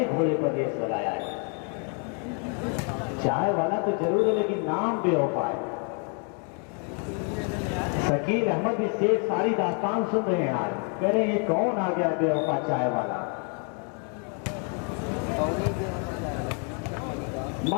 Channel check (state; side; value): quieter; right; 39.5 dB